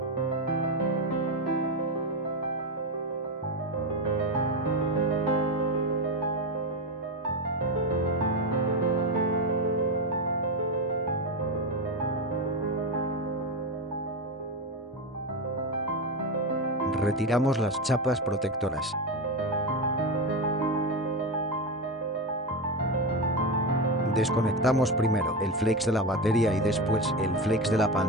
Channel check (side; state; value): both; normal; correlation 0.15